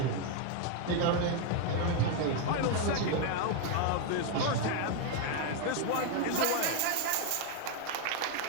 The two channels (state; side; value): different; both; correlation 0.01